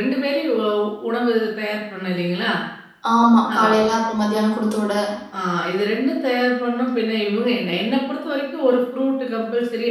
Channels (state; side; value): identical; both; correlation 1.00